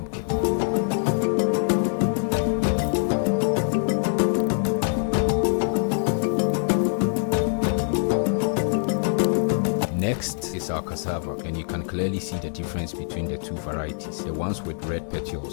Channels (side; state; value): right; silent; digital silence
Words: Next is our cassava, and you can clearly see the difference between the two varieties. The ones with red